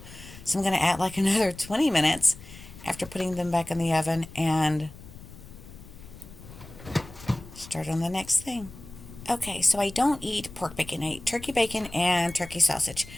So I'm going to add like another 20 minutes after putting them back in the oven and start on the next thing. Okay, so I don't eat pork bacon. I eat turkey bacon and turkey sausage.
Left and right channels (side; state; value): left; noise; rumble, 17 dB below the sound